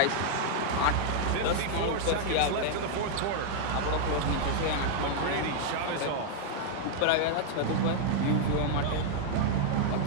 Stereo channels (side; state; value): both; different; correlation -0.01